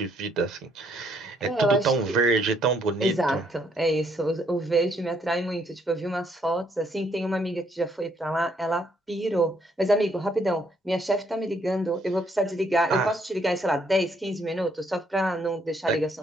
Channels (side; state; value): both; normal; correlation 0.69